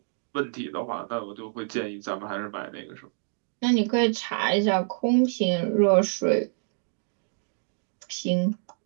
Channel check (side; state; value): left; silent; 60 dB below the other